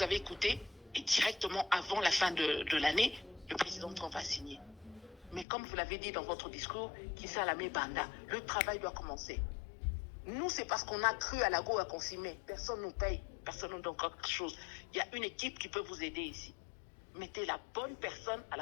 avez écouté est directement avant la fin de l'année, le président Trump a signé. Mais comme vous l'avez dit dans votre discours, Kissa Lamé Banda, le travail doit commencer. Nous, c'est parce qu'on a cru à la Goa qu'on s'y met. Personne ne nous paye, personne ne nous donne quelque chose. Il y a une équipe qui peut vous aider ici. Mettez la bonne personne à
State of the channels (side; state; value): right; drops out; at 5.5 s